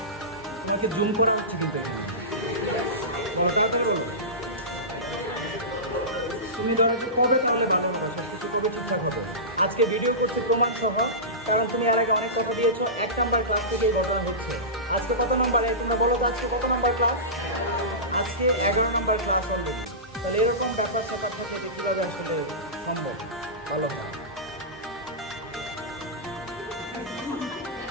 তোমাকে জুম করা হচ্ছে কিন্তু তুমি ধরো যে কবে তাহলে ভালো হবে, সবকিছু কবে ঠিকঠাক হবে? আজকে ভিডিও করতে প্রমাণ সহ, কারণ তুমি এর আগে অনেক কথা দিয়েছো। 1 নাম্বার ক্লাস থেকেই ঘটনা হচ্ছে। আজকে কত নাম্বারে তোমরা বলো তো, আজকে কত নাম্বার ক্লাস? আজকে 11 নাম্বার ক্লাস অলরেডি। তাহলে এরকম ব্যাপার স্যাপার থাকে যে কীভাবে আসলে সম্ভব? ভালো হয়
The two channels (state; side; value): normal; both; correlation -0.20